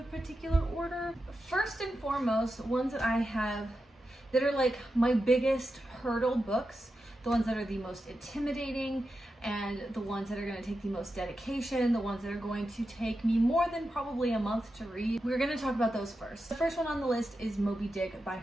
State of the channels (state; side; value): normal; both; correlation 0.90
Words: particular order? First and foremost, ones that I have that are like my biggest hurdle books, the ones that are the most intimidating, and the ones that are going to take the most dedication, the ones that are going to take me more than probably a month to read. We're going to talk about those first. The first one on the list is Moby Dick by